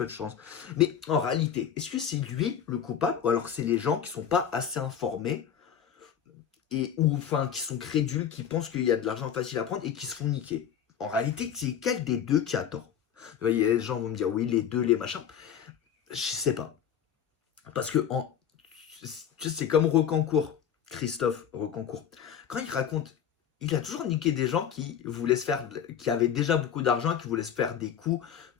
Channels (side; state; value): right; quieter; 8.7 dB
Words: de chances. Mais en réalité, est-ce que c'est lui le coupable, ou alors c'est les gens qui sont pas assez informés et ou enfin qui sont crédules, qui pensent qu'il y a de l'argent facile à prendre et qui se font niquer. En réalité, c'est quel des deux qui a tort? Vous voyez, les gens vont me dire oui, les deux, les machins. Je sais pas. Parce que tu sais, c'est comme Rocancourt. Christophe Reconcourt, quand il raconte, il a toujours niqué des gens qui voulaient se faire, qui avaient déjà beaucoup d'argent et qui voulaient se faire des coups